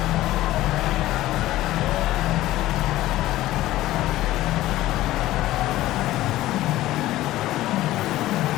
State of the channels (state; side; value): quieter; right; 15.8 dB